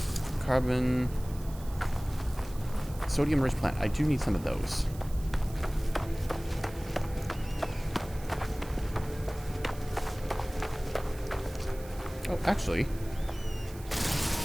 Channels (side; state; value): right; noise; hiss, 19 dB below the sound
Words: carbon, sodium-rich plant. I do need some of those. Oh, actually,